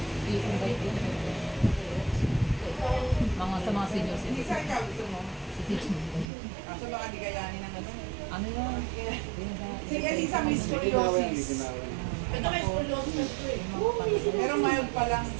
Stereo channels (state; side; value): drops out; left; at 6.2 s